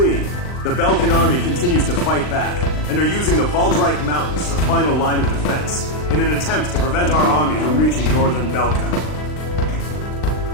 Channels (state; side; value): late; right; 39 ms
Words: the Belkan army continues to fight back, and are using the Valdreich Mountains as a final line of defense, in an attempt to prevent our army from reaching northern Belka.